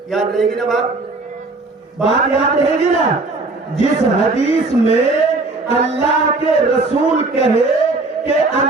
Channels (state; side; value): quieter; left; 3.4 dB